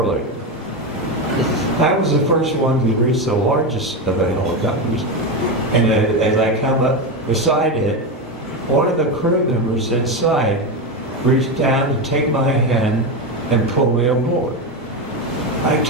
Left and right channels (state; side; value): normal; both; correlation 0.14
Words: I was the first one to reach the largest of the helicopters, and as I come up beside it, one of the crew members inside reached down to take my hand and pull me aboard. I